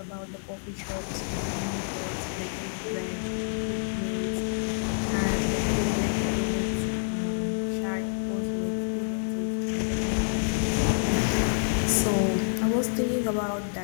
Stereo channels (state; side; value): silent; right; digital silence